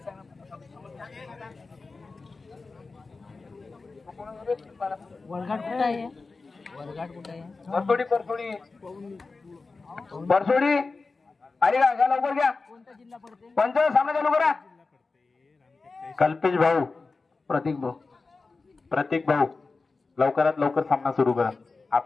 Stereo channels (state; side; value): quieter; right; 4.0 dB